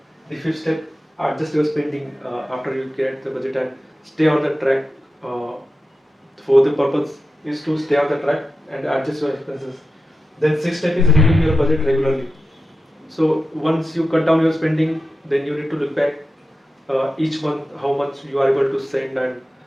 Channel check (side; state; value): both; normal; correlation 0.91